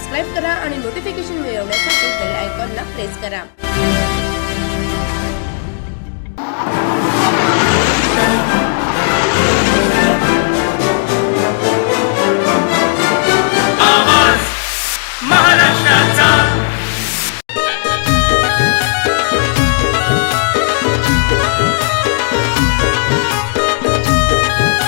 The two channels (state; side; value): silent; right; digital silence